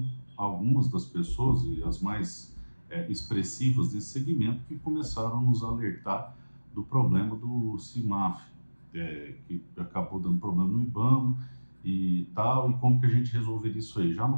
algumas das pessoas e as mais expressivas desse segmento que começaram a nos alertar do problema do CIMAF, que acabou dando problema no IBAMA e tal, e como que a gente resolveria isso aí, já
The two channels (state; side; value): inverted; both; correlation -1.00